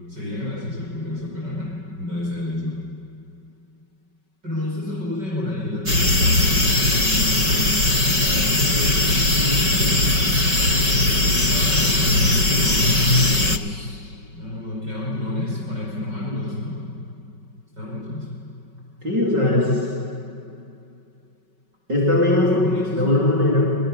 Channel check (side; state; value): left; late; 5.3 ms